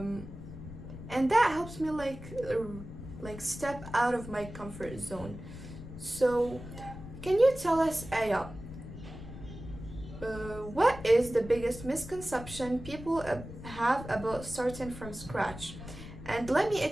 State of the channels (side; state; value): left; noise; rumble, 12 dB below the sound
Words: and that helps me step out of my comfort zone. So Yeah. can you tell us, Aya, what is the biggest misconception people have about starting from scratch? And let me